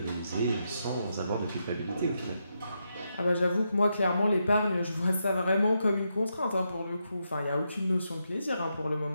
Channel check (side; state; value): both; inverted; correlation -0.83